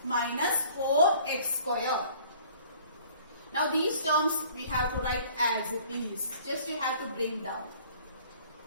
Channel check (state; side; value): inverted; both; correlation -0.52